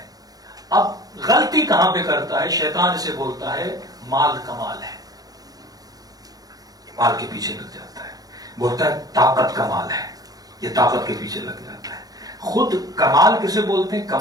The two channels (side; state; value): left; late; 0.18 ms